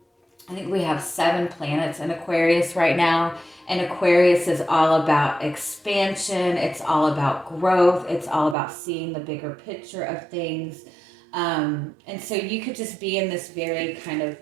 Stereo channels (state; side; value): drops out; left; at 8.6 s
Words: think we have 7 planets in Aquarius right now. And Aquarius is all about expansion. It's all about growth. It's all about seeing the bigger picture of things. And so you could just be in this very kind of